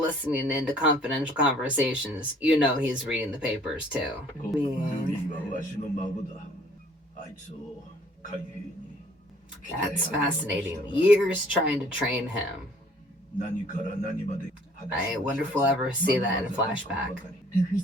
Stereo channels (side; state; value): both; normal; correlation 0.57